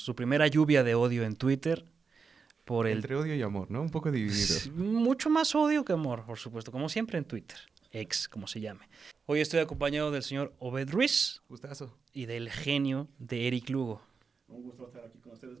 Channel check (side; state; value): left; quieter; 5.3 dB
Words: primera lluvia de odio en Twitter. Entre odio y amor, ¿no? Un poco dividido. Mucho más odio que amor, por supuesto, como siempre en Twitter, ex, como se llame. Hoy estoy acompañado del señor Obed Ruiz. Gustazo. Y del genio de Eric Lugo. Un gusto estar aquí con ustedes,